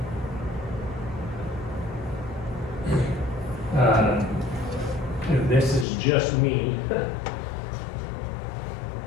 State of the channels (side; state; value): right; drops out; at 5.9 s